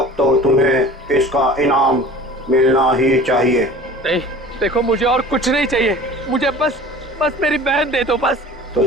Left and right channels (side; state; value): both; normal; correlation 0.42